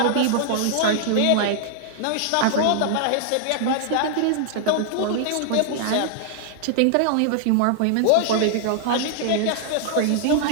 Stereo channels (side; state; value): both; different; correlation -0.01